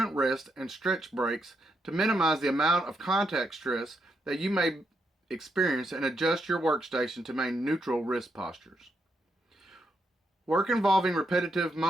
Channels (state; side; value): normal; both; correlation 0.80